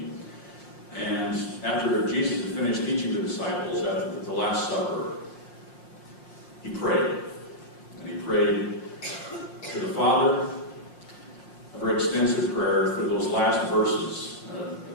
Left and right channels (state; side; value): late; right; 5.6 ms